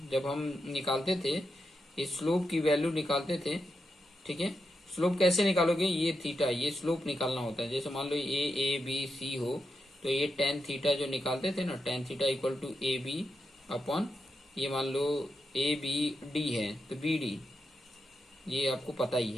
जब हम निकालते थे, इस स्लोप की वैल्यू निकालते थे। ठीक है, स्लोप कैसे निकालोगे, ये थीटा, ये स्लोप निकालना होता है। जैसे मान लो ए बी सी हो तो ये टेन थीटा जो निकालते थे ना, tan theta equal to a b upon, ये मान लो ए बी डी है तो बी डी, ये आपको पता ही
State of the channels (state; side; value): normal; both; correlation 0.86